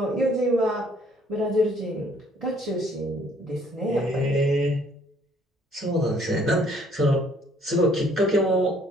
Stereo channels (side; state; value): both; normal; correlation 0.61